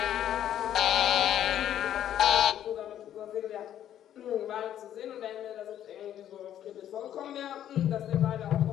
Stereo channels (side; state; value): right; quieter; 11.0 dB